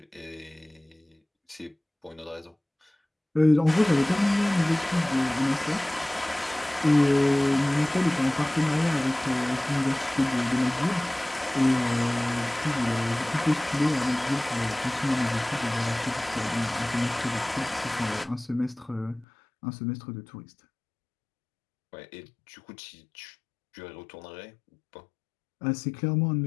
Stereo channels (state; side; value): drops out; right; at 19.2 s